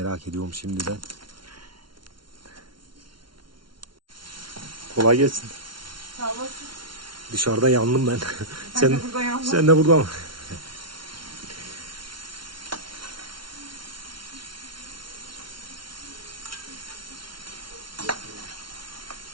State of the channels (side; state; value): left; late; 0.73 ms